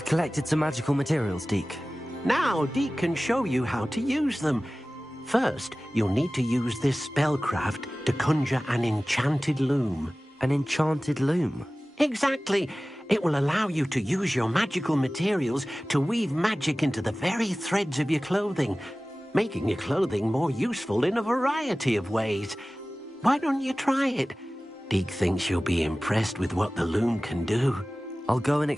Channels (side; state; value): both; normal; correlation 0.97